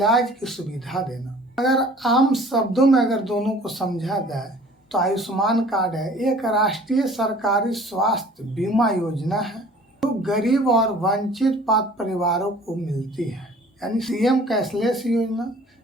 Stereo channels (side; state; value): both; normal; correlation 0.50